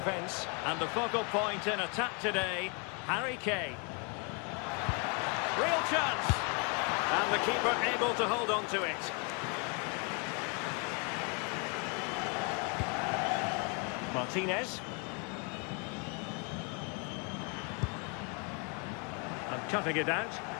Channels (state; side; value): quieter; right; 35.6 dB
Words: And the focal point in attack today, Harry Kane. Real chance. And the keeper able to hold on to it. Martinez. And cutting it out.